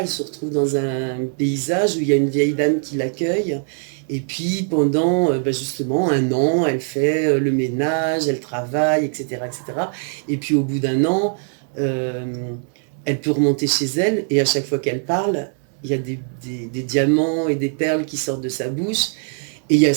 se retrouve dans un paysage où il y a une vieille dame qui l'accueille. Et puis pendant justement un an, elle fait le ménage, elle travaille, etc., etc. Et puis au bout d'un an, elle peut remonter chez elle et à chaque fois qu'elle parle, il y a des diamants et des perles qui sortent de sa bouche. Et il y a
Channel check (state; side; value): silent; left; 57 dB below the other